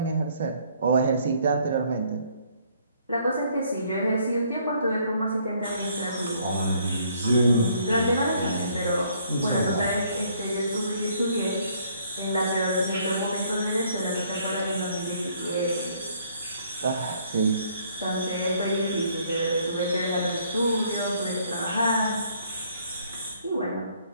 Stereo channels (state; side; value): inverted; both; correlation -0.65